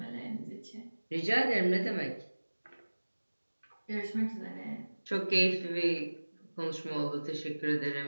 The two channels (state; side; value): inverted; both; correlation -1.00